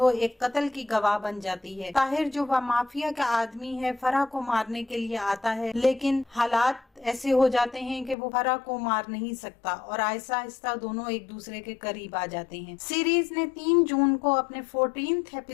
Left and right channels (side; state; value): right; drops out; at 8.2 s